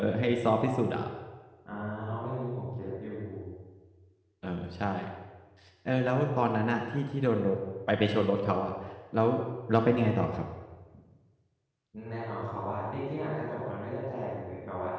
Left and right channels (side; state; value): both; identical; correlation 1.00